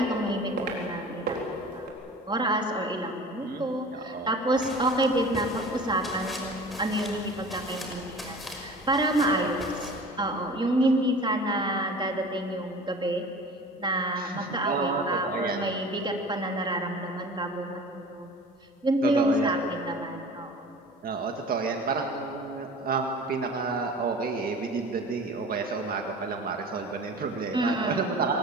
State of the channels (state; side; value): normal; both; correlation 0.40